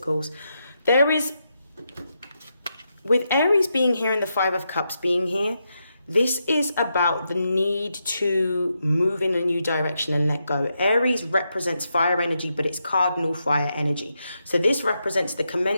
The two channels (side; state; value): both; inverted; correlation -0.84